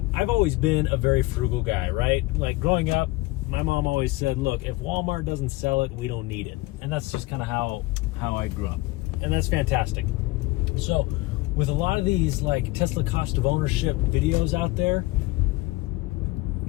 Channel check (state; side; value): quieter; right; 20.5 dB